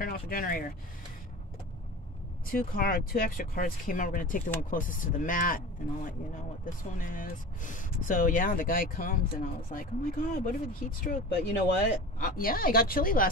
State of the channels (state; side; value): normal; both; correlation 0.34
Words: off the generator. Two extra cards came out. We're gonna take the one closest to the mat, and I'll let you know what this one is. So yeah, the guy comes, and I was like, oh my god, what if it's heat stroke? But you know what? Yeah, I got chilly